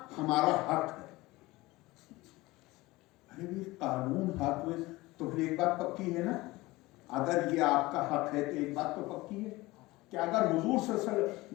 हमारा हक है। अरे भी कानून हक में तो फिर एक बात पक्की है ना, अगर ये आपका हक है तो एक बात तो पक्की है कि अगर हुजूर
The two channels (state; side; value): quieter; right; 20.3 dB